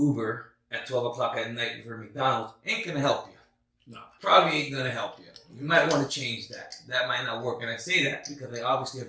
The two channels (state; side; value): identical; both; correlation 1.00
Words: at 12 o'clock at night for McDonald's ain't gonna help you. No. Probably ain't gonna help you. You might want to change that. That might not work. And I say that because I obviously